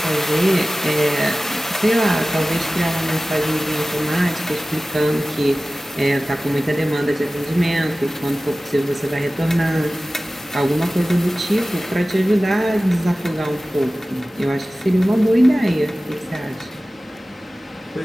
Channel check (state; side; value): normal; both; correlation 0.97